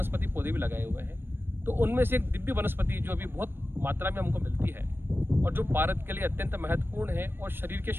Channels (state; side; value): late; left; 0.10 ms